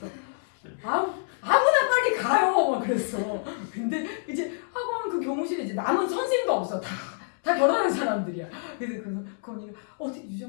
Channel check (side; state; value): right; silent; 60 dB below the other